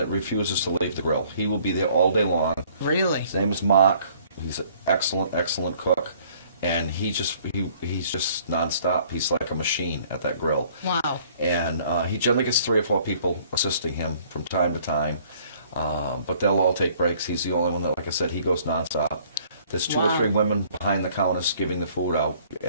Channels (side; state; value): both; inverted; correlation -0.59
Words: refuses to leave the grill. He will be there all day long. Really? His name is Mark. He's an excellent cook, and he's just nonstop. He's like a machine at that grill. Wow. And he generally gets 3 or 4 people assisting him from time to time, but they'll all take breaks. He's the only one that, like I said, he goes nonstop. There's 2 or 3 women behind the counters giving the food out,